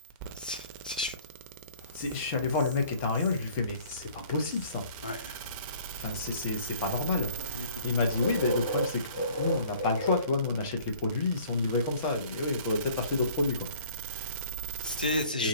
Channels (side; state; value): both; inverted; correlation -0.51